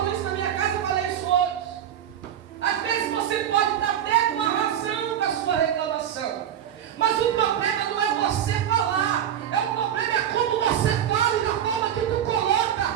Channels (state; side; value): quieter; left; 9.9 dB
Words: isso na minha casa, eu falei isso hoje. Às vezes você pode estar até com a razão com a sua reclamação, mas o problema não é você falar, o problema é como você fala e na forma que tu